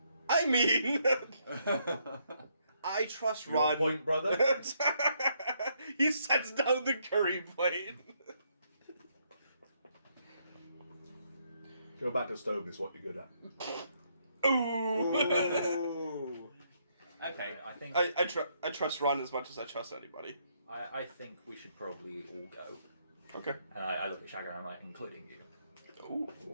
I mean, I trust Your Run. point, brother. He sets down the curry plate. Go back to stove is what you're good at. Ooh. Okay. I think I trust Ron as much as I trust anybody. I think we should probably all go. Okay. And I look at Shagger and I'm like, including you. Ooh.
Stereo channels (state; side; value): inverted; both; correlation -0.73